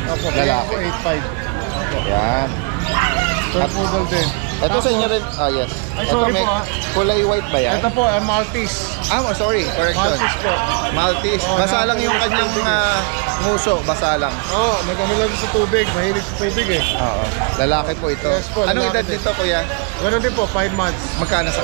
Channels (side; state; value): left; quieter; 31.7 dB